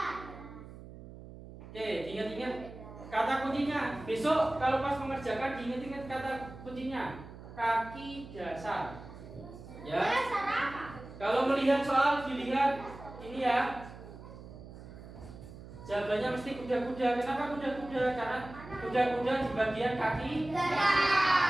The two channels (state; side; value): noise; right; hum, 15 dB below the sound